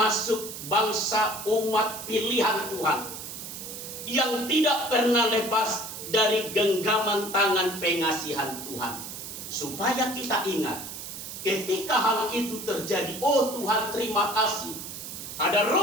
bangsa umat pilihan Tuhan yang tidak pernah lepas dari genggaman tangan pengasihan Tuhan. Supaya kita ingat, ketika hal itu terjadi, oh Tuhan terima kasih, ada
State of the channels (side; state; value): right; noise; hiss, 9 dB below the sound